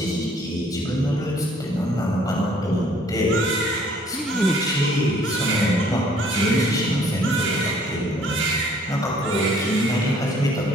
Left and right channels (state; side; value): normal; both; correlation 0.59